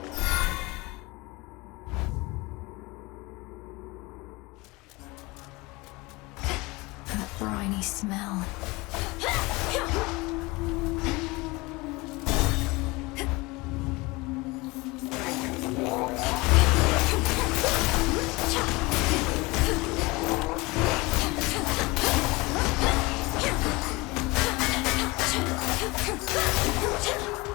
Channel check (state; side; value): quieter; right; 23.7 dB